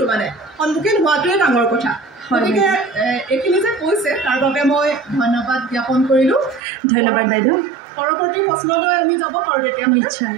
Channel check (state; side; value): drops out; left; at 6.6 s